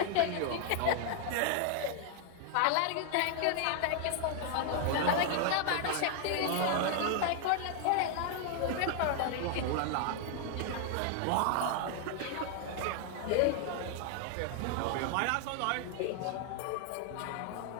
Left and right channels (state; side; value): different; both; correlation 0.00